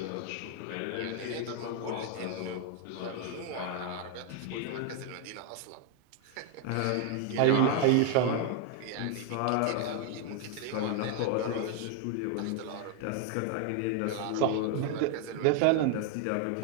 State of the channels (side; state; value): both; different; correlation 0.00